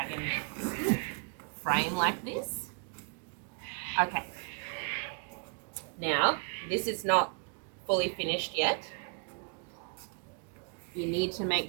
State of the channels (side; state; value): left; quieter; 39.6 dB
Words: frame like this. Okay. Now, this is not fully finished yet. You need to make